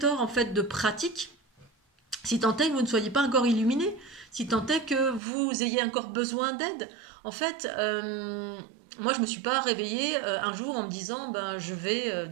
en fait de pratiques, si tant est que vous ne soyez pas encore illuminé, si tant est que vous ayez encore besoin d'aide. En fait, moi, je ne me suis pas réveillée un jour en me disant ben, je vais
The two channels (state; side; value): drops out; left; at 5.2 s